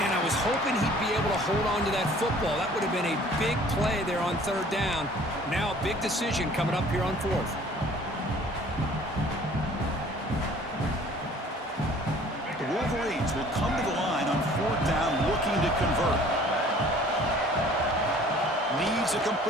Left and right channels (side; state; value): both; normal; correlation 0.52